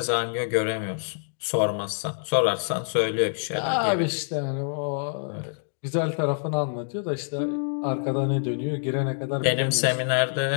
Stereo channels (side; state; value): right; silent; digital silence